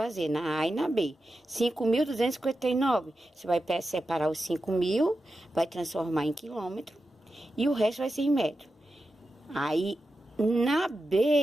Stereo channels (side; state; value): both; normal; correlation 0.91